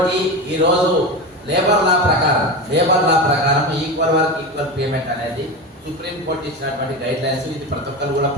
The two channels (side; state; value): both; normal; correlation 0.23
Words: ఈరోజు లేబర్ లా ప్రకారం ఈక్వల్ వర్క్ ఈక్వల్ పేమెంట్ అనేది సుప్రీంకోర్టు ఇచ్చినటువంటి గైడ్ లైన్స్, ఇది ప్రతి ఒక్కరు కూడా